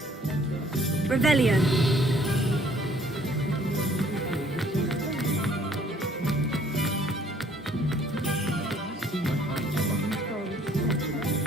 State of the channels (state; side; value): normal; both; correlation 0.60